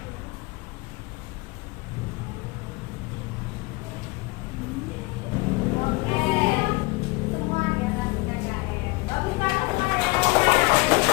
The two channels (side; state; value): right; quieter; 24.4 dB